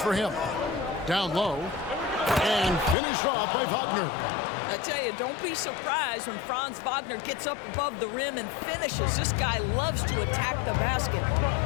him. Down low. And finished off by Wagner. I tell you, don't be surprised when Franz Wagner gets up above the rim and finishes. This guy loves to attack the basket.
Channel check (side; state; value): right; drops out; at 3.0 s